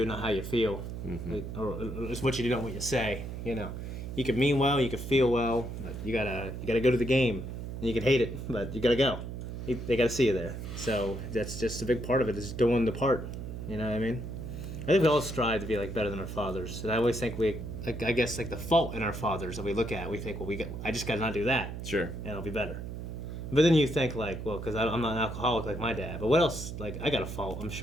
not how you feel. Mm-hmm. Or it's what you do, not what you say. You can mean well, you can feel well, but you gotta go to the game. And you can hate it, but you gotta go. They gotta see you there. So that's just a big part of it, is doing the part. You know what I mean? I think we all strive to be better than our fathers. And I always think I guess the fault in our fathers that we look at, we think, I just gotta not do that. Sure. And I'll be better. But then you think because I'm not an alcoholic like my dad. But what else? I got a fault. I'm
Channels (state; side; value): noise; right; hum, 7 dB below the sound